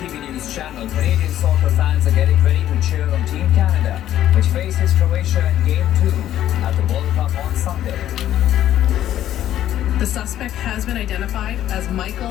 News Channel. Canadian soccer fans are getting ready to cheer on Team Canada, which faces Croatia in Game 2 at the World Cup on Sunday. The suspect has been identified as Michael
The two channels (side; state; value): right; quieter; 12.0 dB